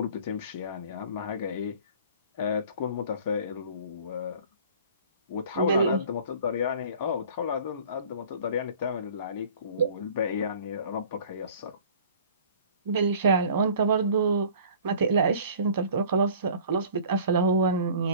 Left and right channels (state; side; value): inverted; both; correlation -0.47